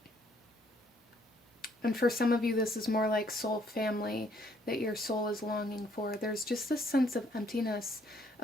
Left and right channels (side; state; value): both; normal; correlation 0.66